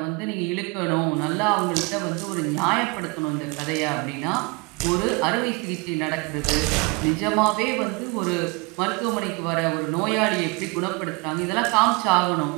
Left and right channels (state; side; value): quieter; left; 28.6 dB